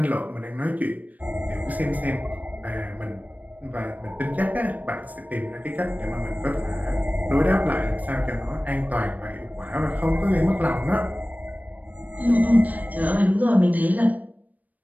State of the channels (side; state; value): left; late; 0.077 ms